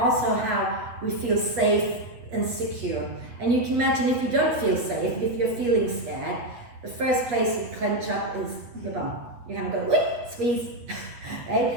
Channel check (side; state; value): left; late; 8.3 ms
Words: how we feel safe and secure. And you can imagine, if you don't feel safe, if you're feeling scared, the first place you clench up is the bum. You kind of go, wait, squeeze.